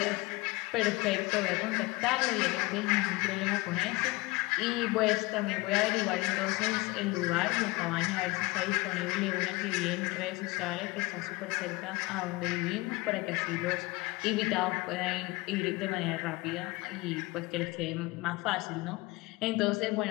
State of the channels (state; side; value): quieter; right; 22.6 dB